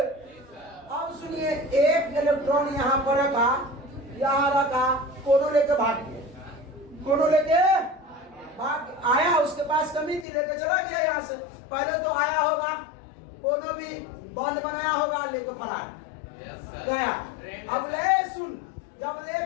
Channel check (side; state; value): right; drops out; at 10.2 s